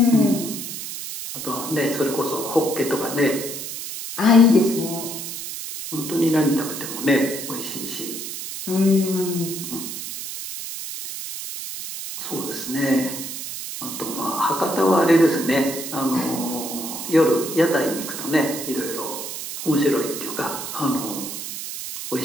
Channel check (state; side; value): noise; right; hiss, 7 dB below the sound